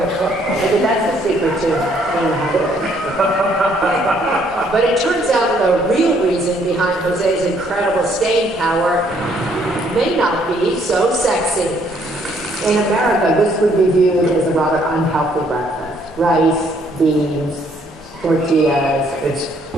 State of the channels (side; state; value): both; normal; correlation 0.66